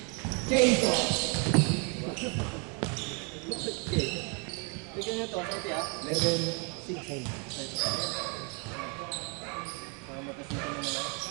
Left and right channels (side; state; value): left; quieter; 34.9 dB